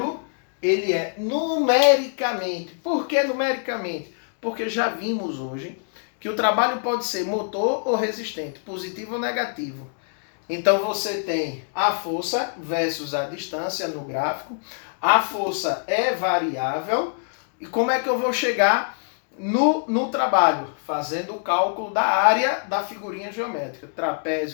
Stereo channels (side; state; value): right; silent; digital silence